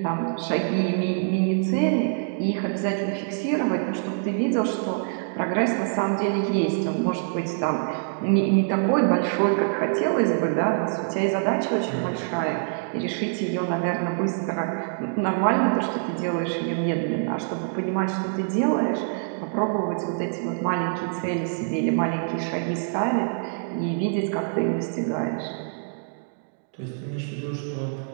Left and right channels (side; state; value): left; silent; digital silence